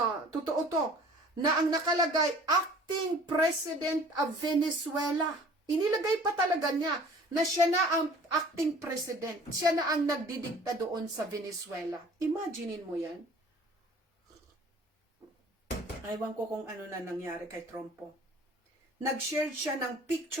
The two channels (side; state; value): both; normal; correlation 0.49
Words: totoo to, na ang nakalagay, acting president of Venezuela. Inilagay pa talaga niya na siya na ang acting president. Siya na ang nagdidikta doon sa Venezuela. Imaginein mo yan. Ewan ko kung ano na nangyari kay Trump po. Nag-share siya ng